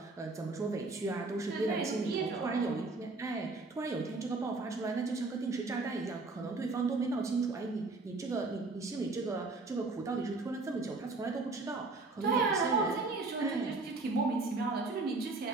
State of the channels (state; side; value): quieter; left; 3.5 dB